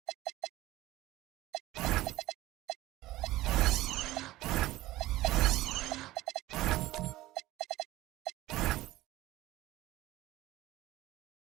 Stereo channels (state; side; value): quieter; left; 17.0 dB